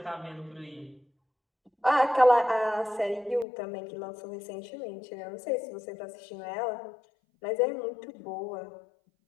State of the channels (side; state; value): right; drops out; at 3.5 s